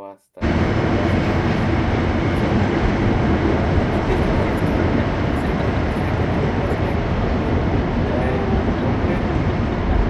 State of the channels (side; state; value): both; identical; correlation 1.00